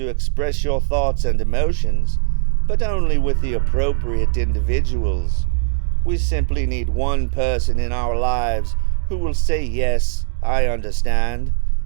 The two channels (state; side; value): silent; left; 66 dB below the other